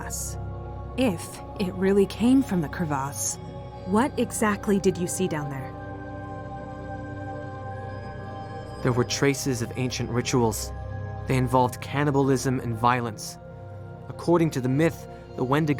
If it really came from the Crevasse, what exactly did you see down there? There were traces of ancient rituals. They involved cannibalism and violence. According to the myth, the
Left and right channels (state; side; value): identical; both; correlation 1.00